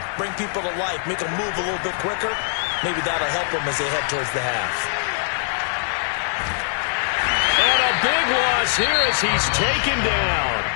bring people to life, make them move a little bit quicker. Maybe that'll help them as they head towards the half. And a big loss here as he's taken down.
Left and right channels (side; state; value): right; silent; digital silence